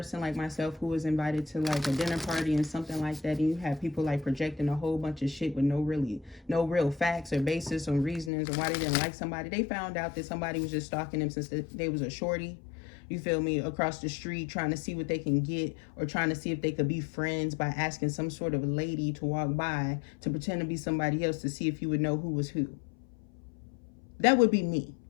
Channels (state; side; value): drops out; right; at 8.3 s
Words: like myself who was invited to like a dinner party and something like that, and you have people like projecting a whole bunch of shit with no real facts or basis or reasonings or why they didn't like somebody. They found out that somebody was just stalking them since they was a shorty. You feel me? Across the street, trying to see what they can get or trying to see if they could be friends by asking some sort of lady to walk by to pretend to be somebody else to see if you would know who was who. That would be me,